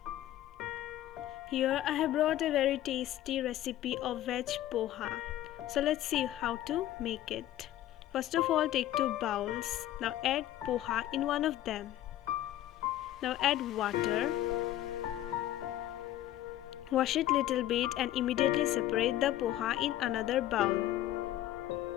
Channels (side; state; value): right; quieter; 13.5 dB